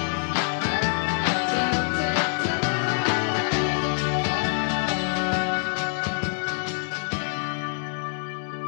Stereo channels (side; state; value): right; silent; 61 dB below the other